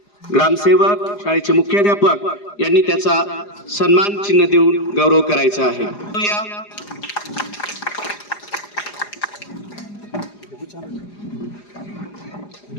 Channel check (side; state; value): right; late; 4.9 ms